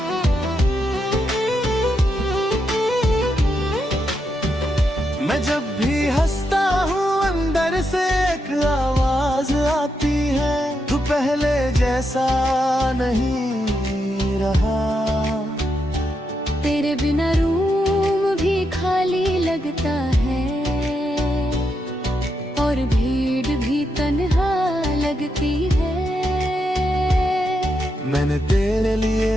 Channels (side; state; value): both; normal; correlation 0.82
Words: मैं जब भी हंसता हूँ अंदर से एक आवाज आती है, तू पहले जैसा नहीं रहा। तेरे बिना रूम भी खाली लगता है, और भीड़ भी तन्हा लगती है। मैंने तेरे लिए